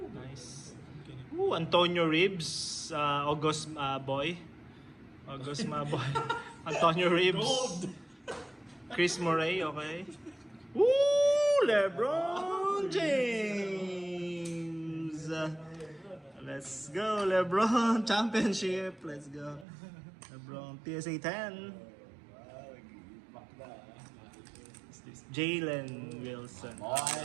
Nice. Ooh, Antonio Reeves. August boy. August boy. Antonio Reeves. Gold. Chris Murray, okay. Ooh, LeBron James. Let's go, LeBron. Championship. Let's go. LeBron, PSA 10. What's this? Jalen Wilson.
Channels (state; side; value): drops out; left; at 19.7 s